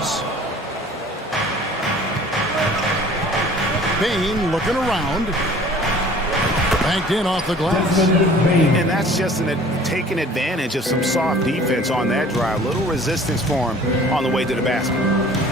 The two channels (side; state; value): both; normal; correlation 0.49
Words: Bane looking around. Banked in off the glass. And that's just taking advantage of some soft defense on that drive. Little resistance for him on the way to the basket.